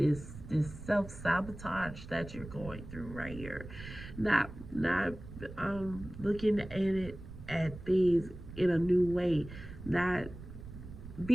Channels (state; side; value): noise; right; rumble, 13 dB below the sound